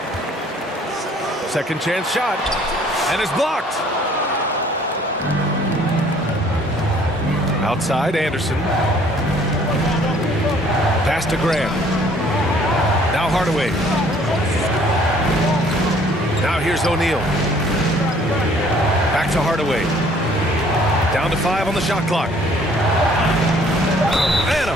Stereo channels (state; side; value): normal; both; correlation 0.58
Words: Second chance shot. And it's blocked. Outside, Anderson. Pass to Graham. Now Hardaway. Now here's O'Neal. Back to Hardaway. Down to 5 on the shot clock. And a